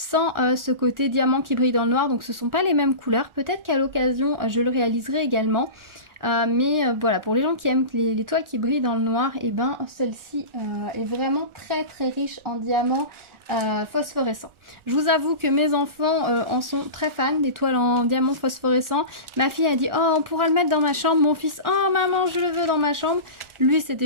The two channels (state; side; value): late; left; 1.4 ms